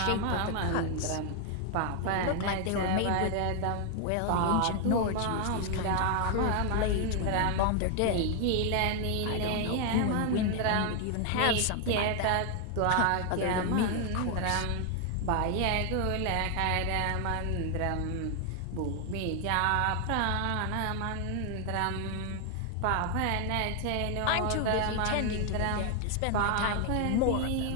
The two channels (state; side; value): different; both; correlation 0.00